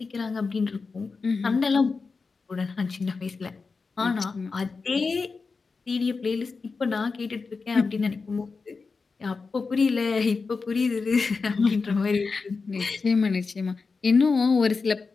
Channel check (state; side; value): quieter; right; 4.5 dB